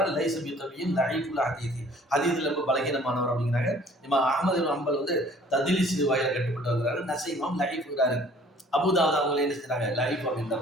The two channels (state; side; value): normal; both; correlation 0.54